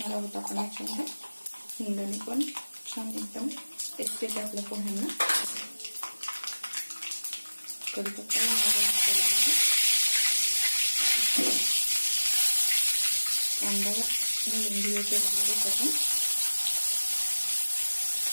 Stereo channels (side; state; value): both; inverted; correlation -1.00